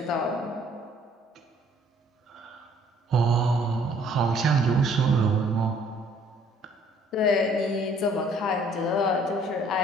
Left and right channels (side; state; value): both; normal; correlation 0.60